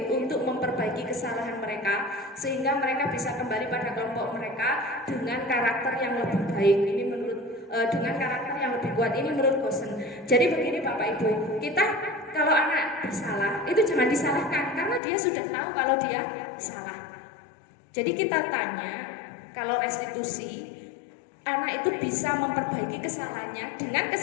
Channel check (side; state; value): right; drops out; at 15.0 s